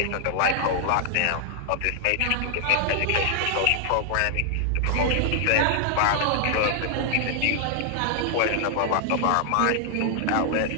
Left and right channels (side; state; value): both; different; correlation 0.00